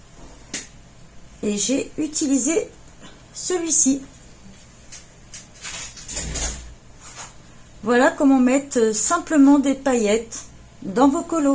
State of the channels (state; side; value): identical; both; correlation 1.00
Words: et j'ai utilisé celui-ci. Voilà comment mettre simplement des paillettes dans vos